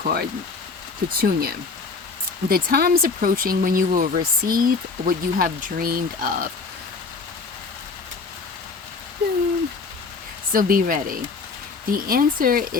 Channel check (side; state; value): right; quieter; 4.5 dB